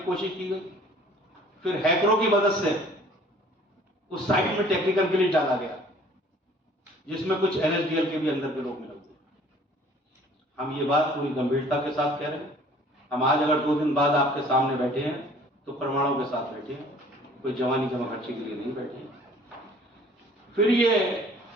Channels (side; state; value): both; normal; correlation 0.53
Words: कोशिश की गई, फिर हैकरों की मदद से उस साइट में टेक्निकल ग्लिच डाला गया जिसमें कुछ एनएसडीएल के भी अंदर के लोग मिले हुए। हम ये बात पूरी गंभीरता के साथ कह रहे हैं। हम आज अगर 2 दिन बाद आपके सामने बैठे हैं तो प्रमाणों के साथ बैठे हैं, कोई जवानी जमाखर्ची के लिए नहीं बैठे हैं। फिर ये